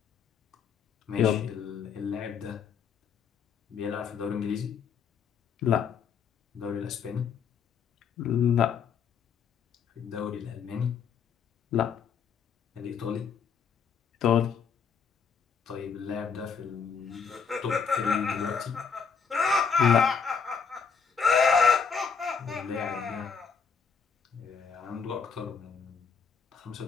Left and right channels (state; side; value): quieter; right; 6.2 dB